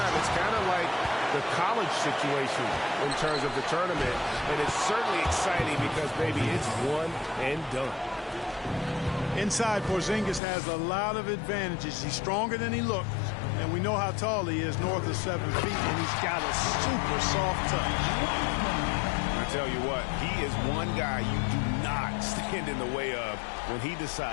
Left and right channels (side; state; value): right; drops out; at 10.4 s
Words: it's kind of like the college situation in terms of the tournament. And it's certainly exciting because, baby, it's one and done. Inside, Porzingis has a lot of advantages. He's stronger than he looks. And we know how tall he is, north of 7 feet. And he's got a super soft touch. Tell you what, he is one guy you do not stand in the way of when he